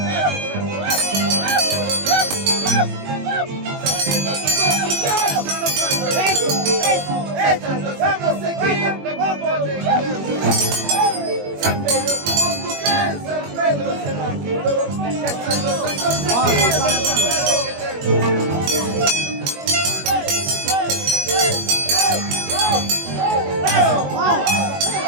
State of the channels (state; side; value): late; left; 21 ms